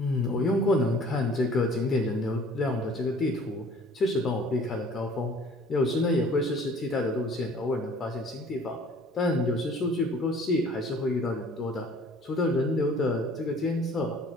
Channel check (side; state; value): both; normal; correlation 0.52